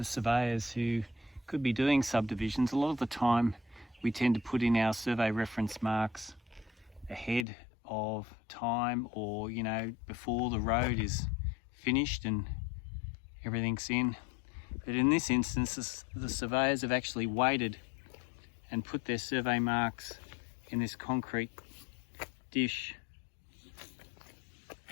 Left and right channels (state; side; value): drops out; right; at 7.5 s